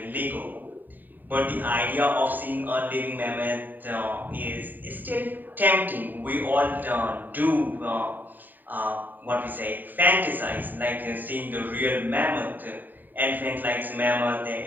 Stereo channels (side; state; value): left; late; 0.089 ms